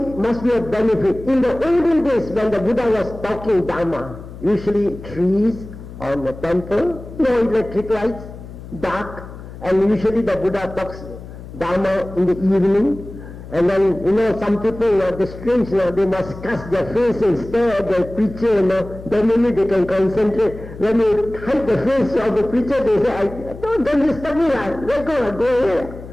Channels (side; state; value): left; noise; hum, 14 dB below the sound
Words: must be a benefit. In the olden days when the Buddha was talking Dharma, usually trees on the temple, no electric lights, dark, and usually the Buddha talks Dharma in the evening. And then, you know, some people, the strange, they must cast their face and stare at the preacher, then maybe they can concentrate. When you hide the face of the preacher, they say, don't disturb me, let go here.